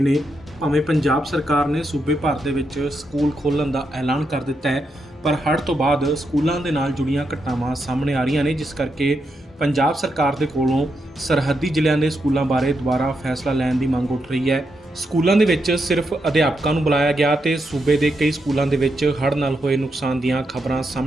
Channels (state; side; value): normal; both; correlation 0.83